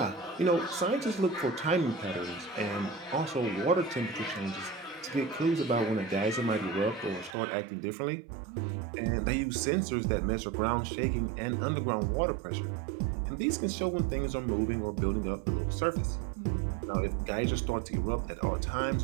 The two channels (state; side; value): drops out; left; at 7.4 s